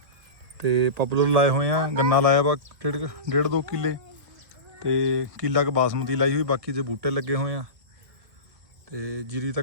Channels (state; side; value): late; left; 1.8 ms